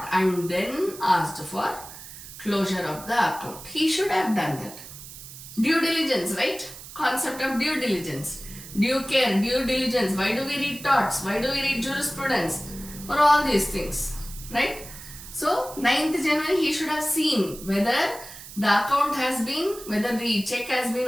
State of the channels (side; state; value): right; noise; hiss, 14 dB below the sound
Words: and then asked for closure of the account. He should have done that. Due diligence, right? Concept of due diligence. Due care, due diligence. Why do we read torts? Why do we read jurisprudence? For all these things, right? So, 9th January he should have seen whether the account has been, whether the check has been